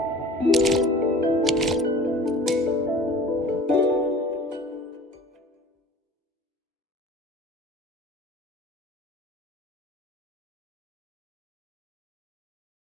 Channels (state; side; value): normal; both; correlation 0.44